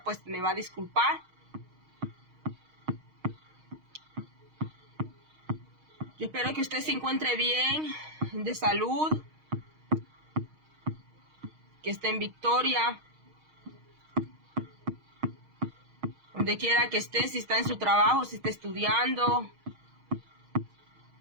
pues me va a disculpar. Yo espero que usted se encuentre bien, de salud, que esté en victoria, donde quiera que esté, si está en su trabajo, si está estudiando.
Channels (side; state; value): left; late; 6.4 ms